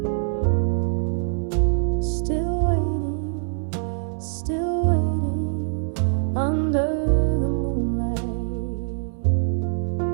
still waiting under the moonlight.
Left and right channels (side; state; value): left; silent; 59 dB below the other